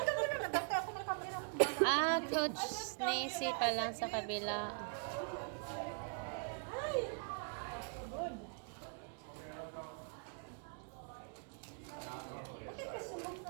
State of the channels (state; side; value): quieter; left; 39.2 dB